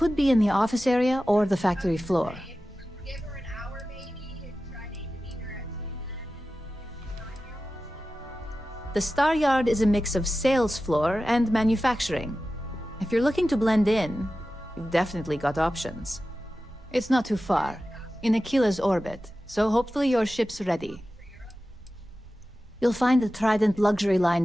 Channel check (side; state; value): both; normal; correlation 0.94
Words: be in the office area or the factory floor. The star yard is a mix of sales floor and manufacturing. If you're looking to blend in, you've definitely got options. It's not too far, in Aquila's orbit, so hopefully your ship's ready. You'll find the Trident Luxury Line